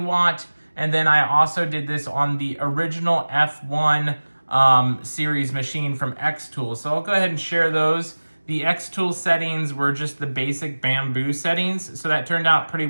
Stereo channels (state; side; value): inverted; both; correlation -1.00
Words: And then I also did this on the original F1 series machine from xTool. So I'll go ahead and share those. The xTool settings were just the basic bamboo settings, so that turned out pretty